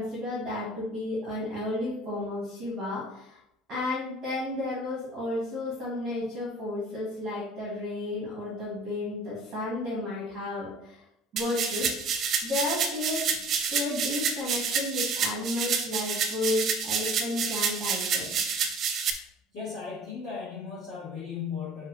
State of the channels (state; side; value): normal; both; correlation 0.47